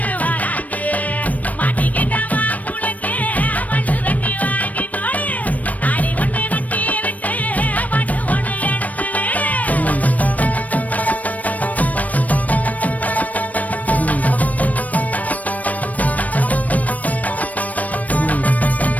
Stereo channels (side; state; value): right; late; 0.072 ms